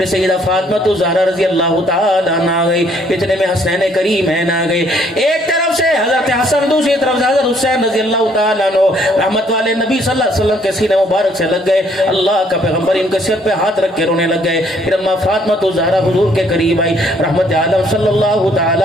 سیدہ فاطمہ الزہرا رضی اللہ تعالیٰ عنہ آ گئی، اتنے میں حسنین کریمین آ گئے، ایک طرف سے حضرت حسن، دوسری طرف سے حضرت حسین رضی اللہ تعالیٰ عنہ، رحمت والے نبی صلی اللہ علیہ وسلم کے سینے مبارک سے لگ گئے، اللہ کا پیغمبر ان کے سر پہ ہاتھ رکھ کے رونے لگ گئے، پھر اما فاطمہ الزہرا حضور کے قریب آئی، رحمت عالم صلی اللہ تعالی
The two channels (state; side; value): normal; both; correlation 0.64